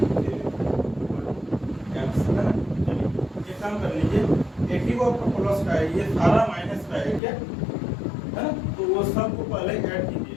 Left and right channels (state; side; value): drops out; right; at 7.2 s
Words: 3 x है ना। चलिए एक काम कर लीजिए, एक ही को आपका प्लस का है, ये सारा माइनस का है क्या है ना, तो वो सब को पहले ऐड कीजिए